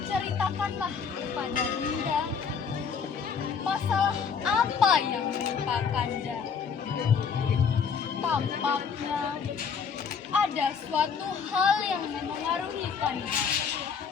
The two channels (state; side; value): quieter; right; 6.3 dB